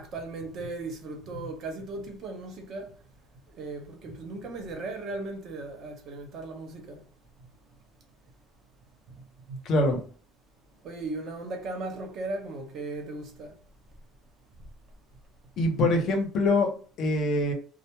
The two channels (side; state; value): both; normal; correlation 0.52